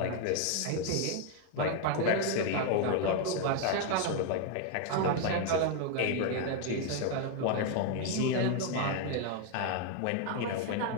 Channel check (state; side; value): different; both; correlation 0.01